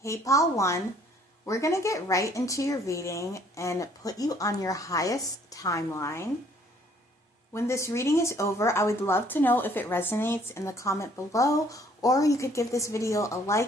Hey pile 1, we're going to get right into your reading and put you on your highest timeline. When this reading is over, I would love to know if it resonates in the comment below, or you could give this video a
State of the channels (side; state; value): both; normal; correlation 0.61